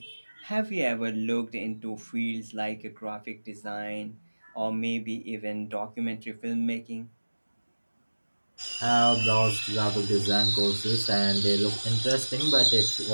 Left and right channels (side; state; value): both; inverted; correlation -1.00